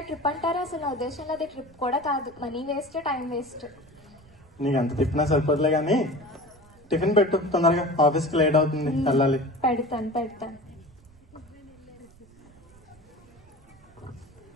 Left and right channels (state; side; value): noise; right; rumble, 26 dB below the sound